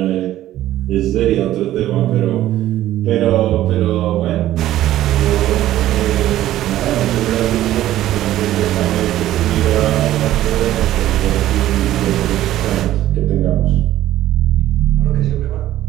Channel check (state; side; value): quieter; left; 13.8 dB